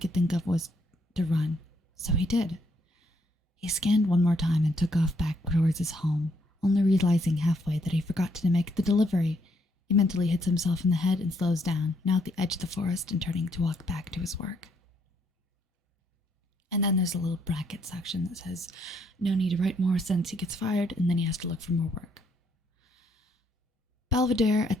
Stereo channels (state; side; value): normal; both; correlation 0.71